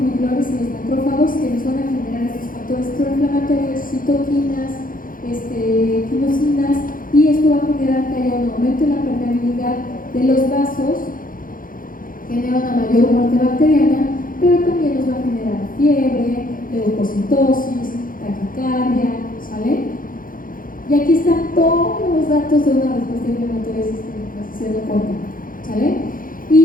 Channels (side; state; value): right; late; 0.40 ms